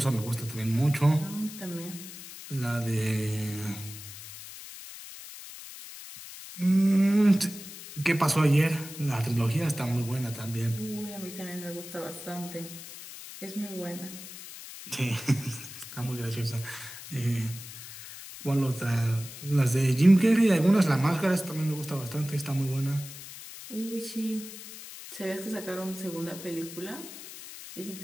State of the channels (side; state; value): left; noise; hiss, 13 dB below the sound